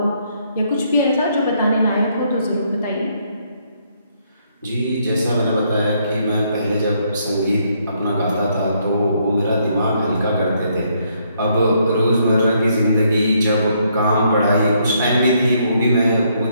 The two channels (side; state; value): both; inverted; correlation -0.72